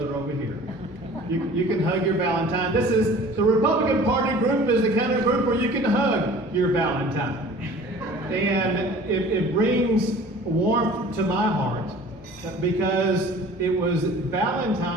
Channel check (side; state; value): both; normal; correlation 0.45